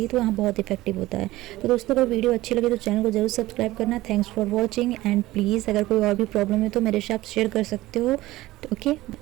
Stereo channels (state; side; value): quieter; left; 17.5 dB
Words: तो यहाँ बहुत इफेक्टिव होता है। तो दोस्तों, अगर वीडियो अच्छी लगे तो चैनल को जरूर सब्सक्राइब करना। Thanks for watching and please अगर कोई और भी प्रॉब्लम है तो मेरे से आप शेयर कर सकते हो। ओके।